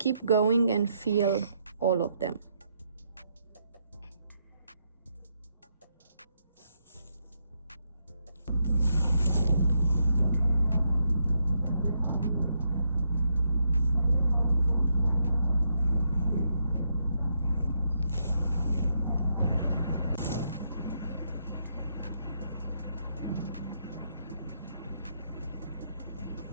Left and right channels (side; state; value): both; inverted; correlation -0.78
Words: going and fill all of them.